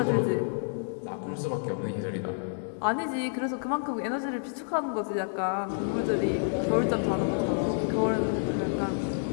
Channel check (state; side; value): silent; right; digital silence